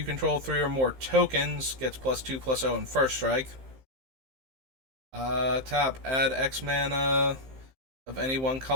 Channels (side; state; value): left; late; 15 ms